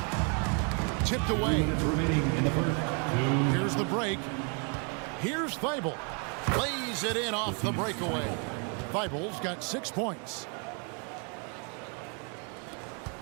Tipped away. Here's the break. Here's Thibault. Lays it in off the breakaway. Thibault's got 6 points.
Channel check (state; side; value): quieter; left; 37.9 dB